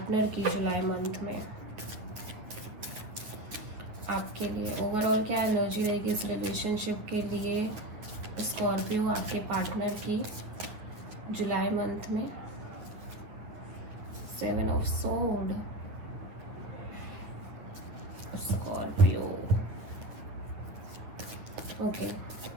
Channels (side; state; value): left; late; 9.4 ms